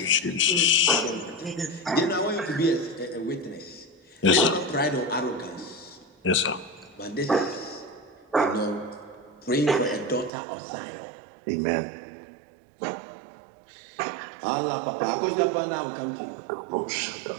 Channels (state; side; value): drops out; left; at 10.3 s